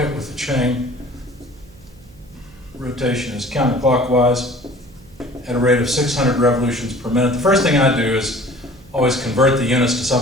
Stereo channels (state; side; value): noise; right; hum, 25 dB below the sound